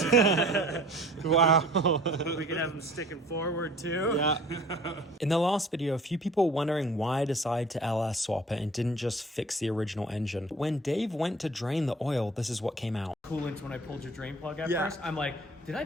Wow. We could have them sticking forward too. Yeah. In the last video, a few people were wondering why I decided to LS swap it and didn't just fix the original engine. When Dave went to drain the oil, this is what came out. Coolant when I pulled your drain plug at Yeah. first. I'm like, did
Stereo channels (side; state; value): both; normal; correlation 0.48